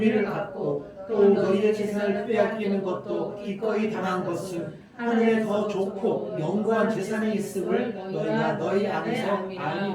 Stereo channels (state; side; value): identical; both; correlation 1.00